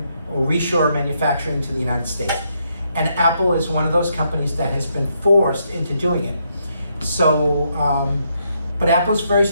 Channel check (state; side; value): inverted; both; correlation -0.76